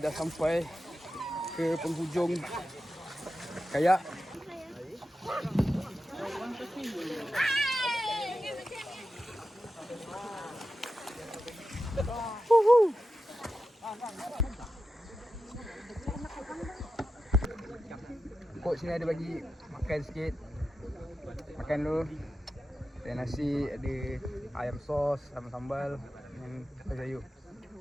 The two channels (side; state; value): both; normal; correlation 0.91